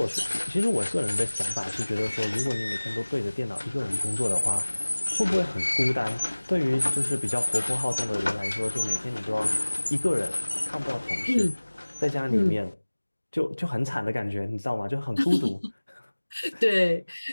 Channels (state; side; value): inverted; both; correlation -1.00